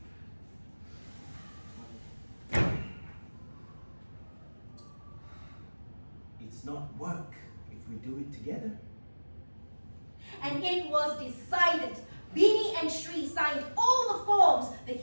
It's not work if we do it together. And it was decided. Beanie and Shri signed all the forms. The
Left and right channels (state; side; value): inverted; both; correlation -1.00